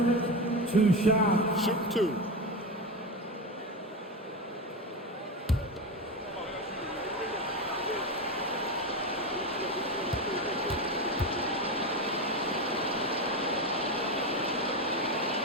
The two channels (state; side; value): normal; both; correlation 0.18